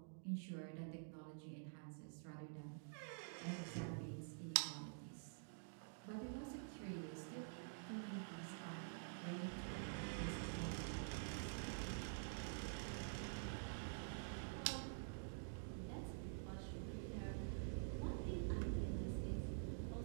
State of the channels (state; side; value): silent; left; digital silence